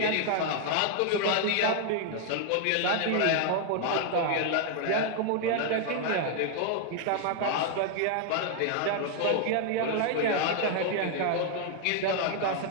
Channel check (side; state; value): both; different; correlation 0.00